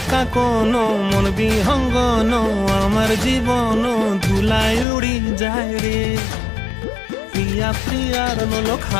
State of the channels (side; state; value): right; drops out; at 4.9 s